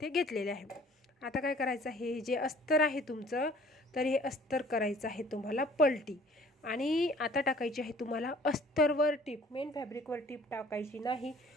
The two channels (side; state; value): both; normal; correlation 0.53